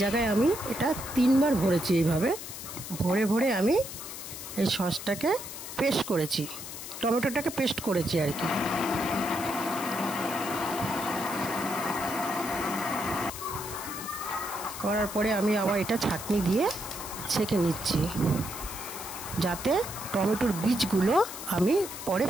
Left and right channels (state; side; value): noise; left; hiss, 10 dB below the sound